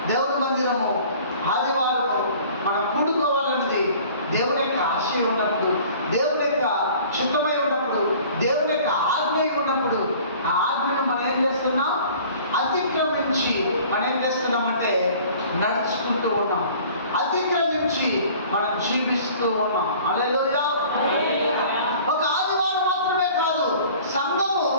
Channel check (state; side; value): inverted; both; correlation -0.48